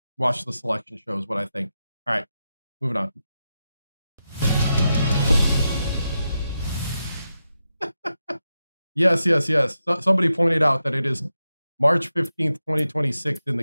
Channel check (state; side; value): inverted; both; correlation -0.88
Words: watch the selection show is what I think. All right, moving on. Yes. Somebody pointed out that it is March 15th, 2026 in